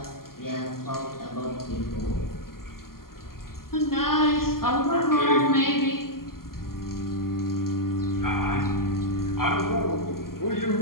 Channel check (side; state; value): right; late; 0.92 ms